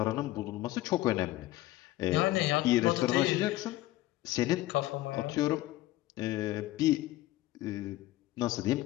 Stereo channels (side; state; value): right; quieter; 16.7 dB